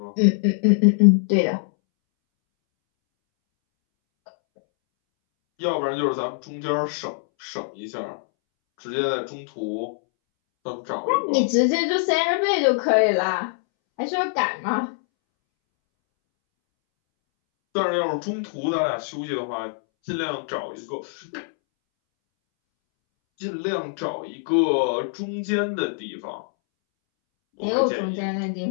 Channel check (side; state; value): right; silent; 63 dB below the other